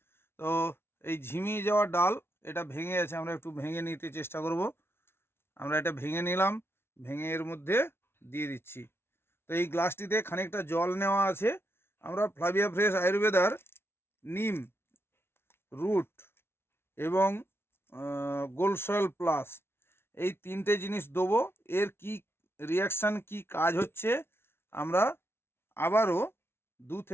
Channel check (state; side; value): late; right; 0.12 ms